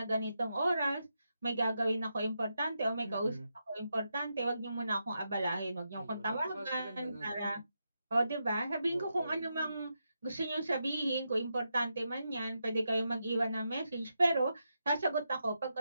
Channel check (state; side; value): inverted; both; correlation -0.85